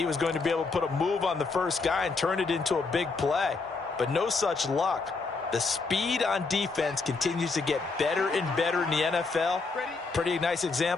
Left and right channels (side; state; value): right; quieter; 4.1 dB